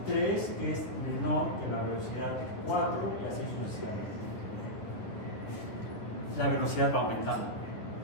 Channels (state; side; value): late; right; 9.9 ms